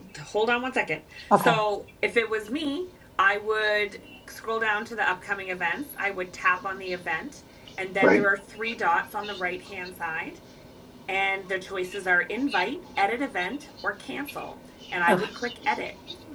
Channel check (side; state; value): both; identical; correlation 1.00